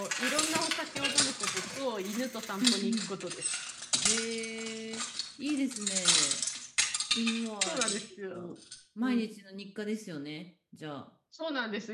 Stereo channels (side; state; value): both; identical; correlation 1.00